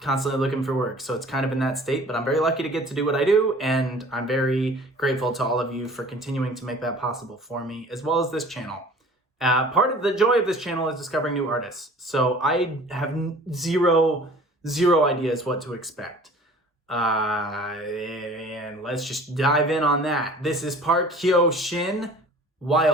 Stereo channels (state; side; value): normal; both; correlation 0.47